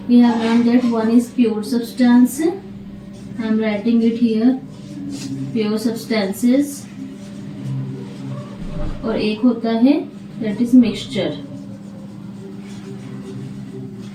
We have learn that one is pure substance, I am writing it here, pure substances, और एक होता है that is mixture.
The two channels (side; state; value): both; identical; correlation 1.00